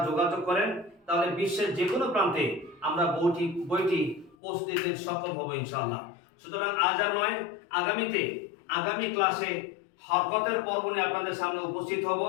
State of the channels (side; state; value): right; drops out; at 4.4 s